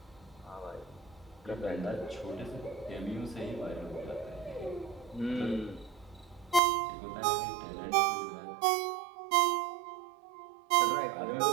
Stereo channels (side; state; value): left; drops out; at 6.6 s